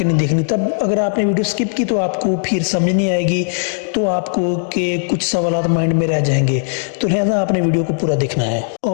नहीं देखनी, तब अगर आपने वीडियो स्किप की तो आपको फिर समझ नहीं आएगी, तो आपको के कुछ सवाल माइंड में रह जाएंगे। तो लिहाजा आपने वीडियो को पूरा देखना है।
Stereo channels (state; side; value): silent; right; 68 dB below the other